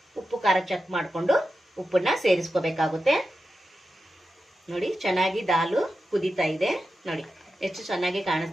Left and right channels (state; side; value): normal; both; correlation 0.91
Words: ಉಪ್ಪು ಖಾರ ಚೆಕ್ ಮಾಡಿಕೊಂಡು ಉಪ್ಪನ್ನು ಸೇರಿಸ್ಕೋಬೇಕಾಗುತ್ತೆ ನೋಡಿ. ಚೆನ್ನಾಗಿ ದಾಲು ಕುದೀತಾ ಇದೆ ನೋಡಿ. ಎಷ್ಟು ಚೆನ್ನಾಗಿ